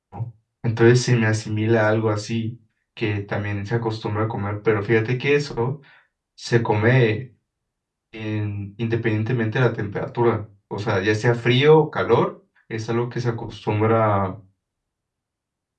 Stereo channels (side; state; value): both; identical; correlation 1.00